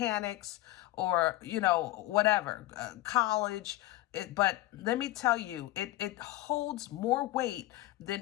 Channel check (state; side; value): quieter; right; 17.2 dB